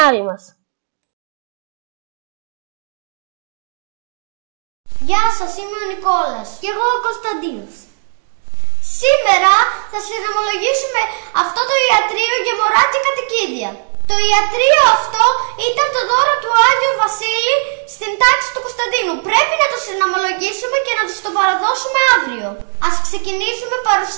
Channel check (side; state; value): left; silent; 64 dB below the other